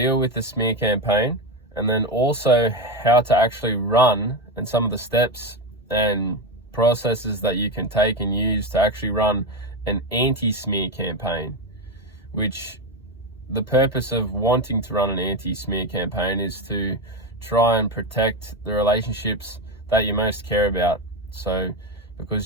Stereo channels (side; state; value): both; normal; correlation 0.15